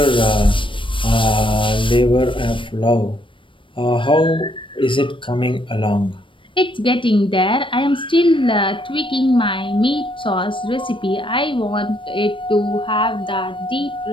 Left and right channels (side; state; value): right; late; 0.25 ms